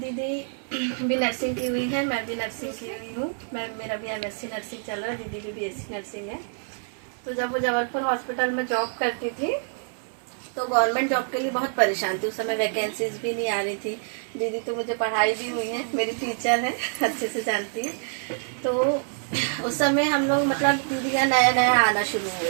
भी नर्सिंग की हुई है, मैं भी नर्सिंग की हुई हूँ। मेरा भी MSc नर्सिंग चल रहा है, दीदी भी BSc नर्सिंग है। तो जब वो जबलपुर हॉस्पिटल में जॉब करती थी तो गवर्नमेंट जॉब के लिए बहुत परेशान थी। उस समय वैकेंसीज भी नहीं आ रही थी। दीदी तो मुझे पढ़ाई भी हुई है, मेरी टीचर है, अच्छे से जानती है। तो उस समय हम लोग मतलब दीदी का नया नया आना शुरू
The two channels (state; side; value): silent; left; digital silence